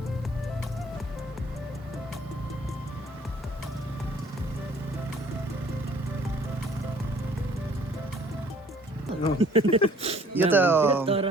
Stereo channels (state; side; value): normal; both; correlation 0.56